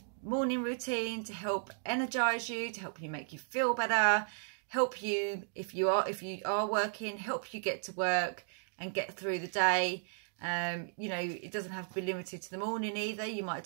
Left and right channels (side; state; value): left; silent; digital silence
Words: morning routine to help energize you, to help you make you feel better, help you if you are working, help you get to work and get through the day. You know, it doesn't have to be limited to the morning either. You might